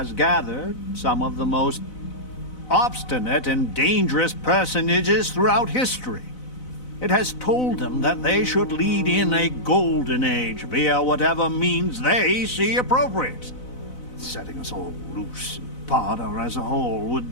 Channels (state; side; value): late; right; 4.0 ms